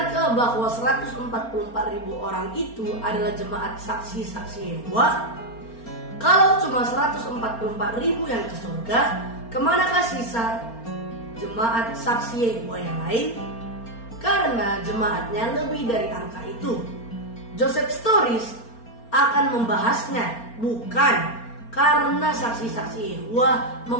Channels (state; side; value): late; right; 4.3 ms